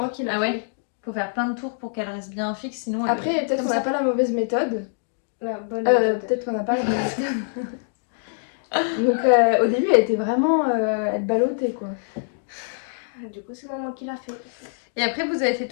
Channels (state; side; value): silent; right; digital silence